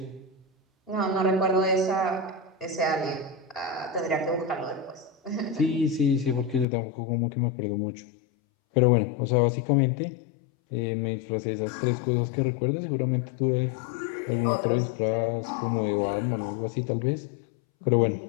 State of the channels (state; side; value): drops out; right; at 6.7 s